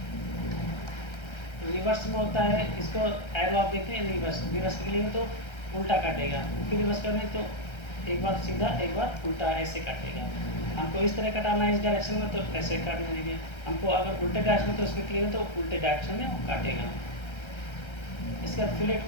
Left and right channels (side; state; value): right; late; 1.3 ms